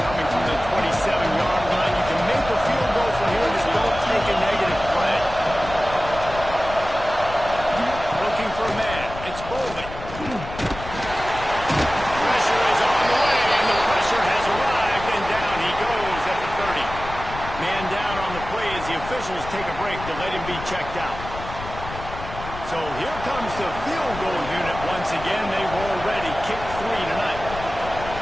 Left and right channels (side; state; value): left; noise; rumble, 11 dB below the sound